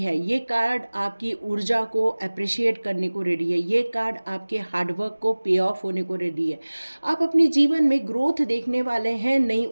है, ये कार्ड आपकी ऊर्जा को अप्रिशिएट करने को रेडी है, ये कार्ड आपके हार्डवर्क को पे ऑफ होने को रेडी है। आप अपने जीवन में ग्रोथ देखने वाले हैं, नई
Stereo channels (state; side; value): inverted; both; correlation -1.00